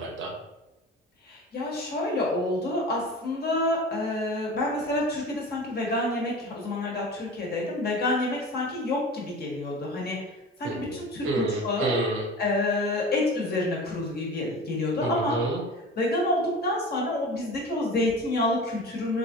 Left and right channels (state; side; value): normal; both; correlation 0.36